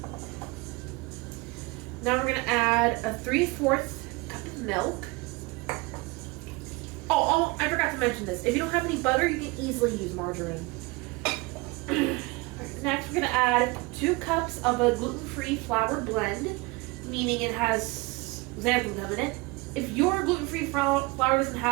Now we're going to add a 3/4 cup of milk. Oh, I forgot to mention this. If you don't have any butter, you can easily use margarine. Next, we're going to add 2 cups of a gluten-free flour blend, meaning it has xantham gum in it. If your gluten-free flour doesn't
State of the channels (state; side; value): quieter; left; 25.0 dB